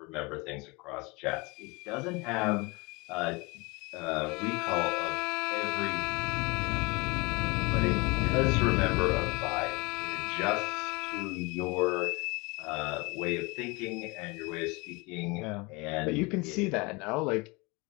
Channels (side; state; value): right; quieter; 26.5 dB